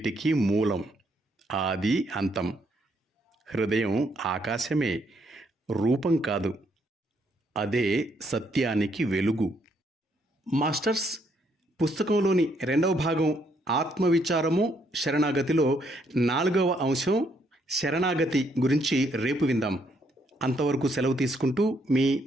మూలం, ఆది అంతం. హృదయం ఆకాశమే, రూపం కాదు. అదే సత్యానికి వెలుగు. మాస్టర్స్, పుస్తకంలోని 2వ భాగం ఆత్మవిచారము శరణాగతిలో 4వ అంశం శరణాగతి గురించి రేపు విందాం. అంతవరకు సెలవు తీసుకుంటూ మీ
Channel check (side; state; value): both; normal; correlation 0.72